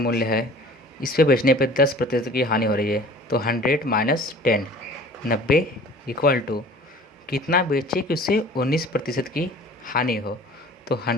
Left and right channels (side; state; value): both; normal; correlation 0.46